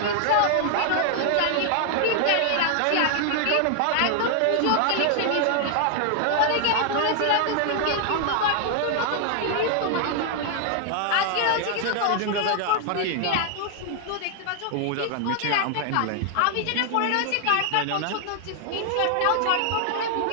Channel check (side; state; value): both; different; correlation 0.00